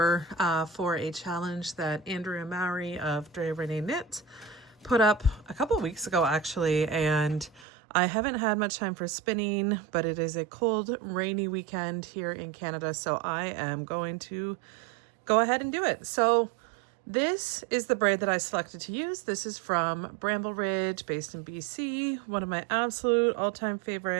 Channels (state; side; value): drops out; left; at 7.7 s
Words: for a challenge that Andrea Mowry of Andrea Knit put up a couple weeks ago actually, and I haven't had much time for spinning, but it is a cold, rainy weekend here in Canada, so I am going to go ahead and do it. So this is the braid that I selected to use. This is from Bramble Ridge, based in BC, one of my absolute all-time